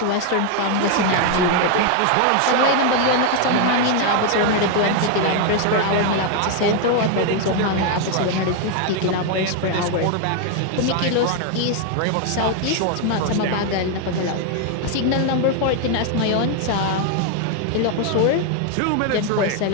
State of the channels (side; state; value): both; different; correlation 0.01